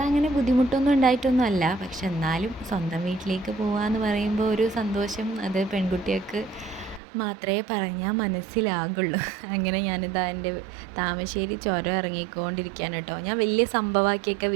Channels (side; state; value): left; drops out; at 7.0 s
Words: അങ്ങനെ ബുദ്ധിമുട്ടൊന്നും ഉണ്ടായിട്ടൊന്നും അല്ല, പക്ഷെ എന്നാലും സ്വന്തം വീട്ടിലേക്ക് പോകാമെന്ന് പറയുമ്പോൾ ഒരു സന്തോഷം അത് പെൺകുട്ടികൾക്ക് മാത്രമേ പറഞ്ഞാൽ മനസ്സിലാകുള്ളൂ. അങ്ങനെ ഞാനിതാ എൻ്റെ താമശ്ശേരി ചുരം ഇറങ്ങിക്കൊണ്ടിരിക്കുകയാണ് കേട്ടോ. ഞാൻ വലിയ സംഭവമാക്കിയൊക്കെ